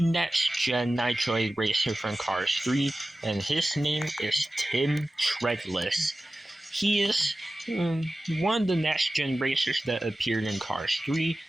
next gen Nitroid racer from Cars 3 and his name is Tim Treadless. He is one of the next gen racers that appeared in Cars 3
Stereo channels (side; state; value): both; normal; correlation 0.95